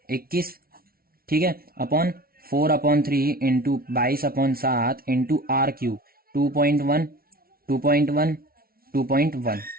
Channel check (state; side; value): late; left; 0.43 ms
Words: 21, ठीक है, upon 4/3 into 22/7 into r cube 2.1 2.1 2.1।